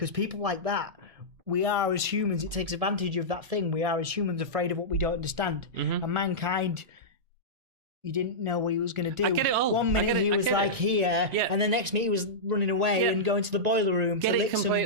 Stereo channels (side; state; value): left; late; 2.3 ms